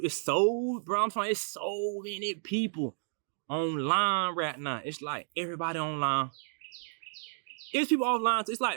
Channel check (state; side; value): silent; left; digital silence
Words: do. It's so, bro, I'm telling you, it's so many people online right now. It's like everybody online. It's people offline. So it's